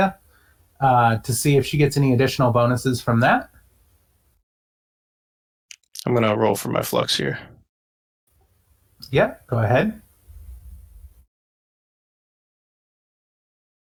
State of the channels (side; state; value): both; identical; correlation 1.00